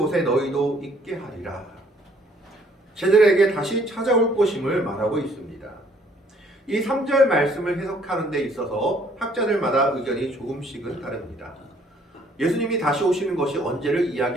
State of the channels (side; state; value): both; normal; correlation 0.62